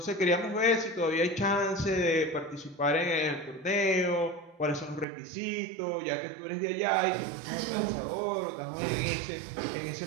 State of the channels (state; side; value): drops out; left; at 5.1 s